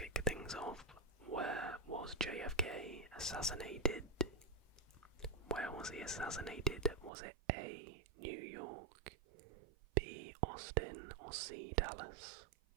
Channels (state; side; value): drops out; left; at 7.1 s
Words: things off. Where was JFK assassinated? Where was he assassinated? Was it A, New York, B, Austin, or C, Dallas?